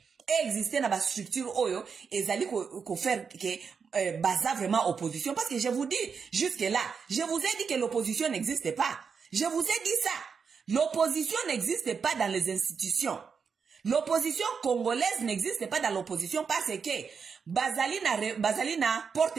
Exister na ba structure oyo ezali ko faire que baza vraiment opposition parce que je vous dis jusque là je vous ai dit que l'opposition n'existe pas. Je vous ai dit ça. L'opposition n'existe pas dans les institutions. L'opposition congolaise n'existe pas dans l'opposition parce que bazali na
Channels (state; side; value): quieter; left; 6.0 dB